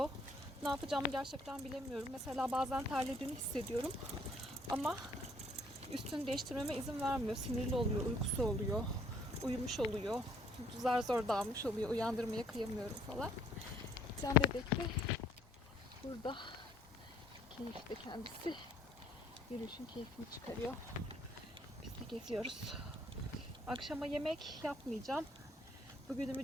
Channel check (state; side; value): normal; both; correlation 0.62